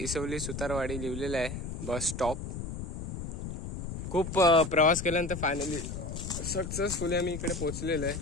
सुतारवाडी लिहिलेलं आहे बस स्टॉप. खूप प्रवास केल्यानंतर फायनली सक्सेसफुली आम्ही इकडे पोहोचलेलो आहे.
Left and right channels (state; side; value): noise; left; rumble, 6 dB below the sound